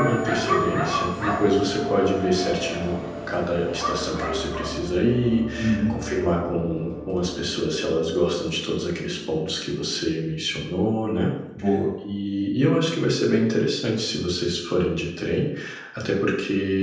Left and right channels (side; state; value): both; identical; correlation 1.00